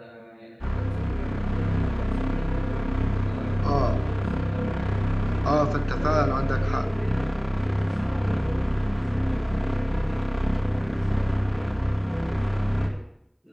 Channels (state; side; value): identical; both; correlation 1.00